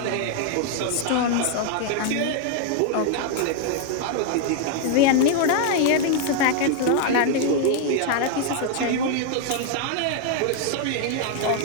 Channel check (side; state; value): both; different; correlation 0.00